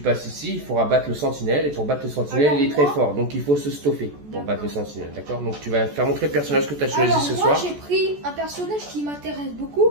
ici, il faudra battre le sentinelle. Et pour battre le sentinelle, Alors, il est très moi- fort. Donc il faut se stuffer pour battre le sentinelle. D'accord? Donc tu vas faire montrer le personnage que tu as choisi Alors, ce moi, soir. j'ai pris un personnage qui m'intéresse beaucoup.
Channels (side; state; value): left; late; 14 ms